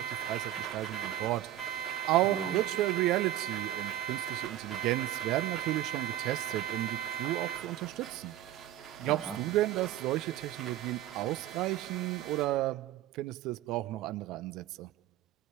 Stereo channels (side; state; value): left; quieter; 13.2 dB